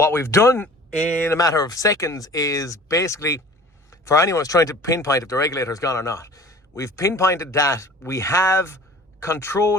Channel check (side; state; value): both; normal; correlation 0.45